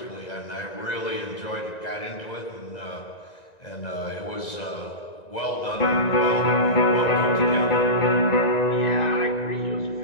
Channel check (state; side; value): late; right; 1.9 ms